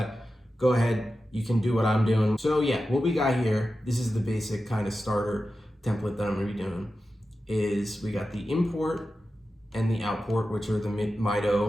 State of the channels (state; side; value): normal; both; correlation 0.92